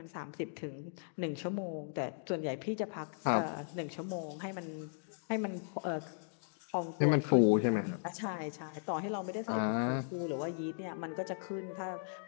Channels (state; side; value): silent; right; digital silence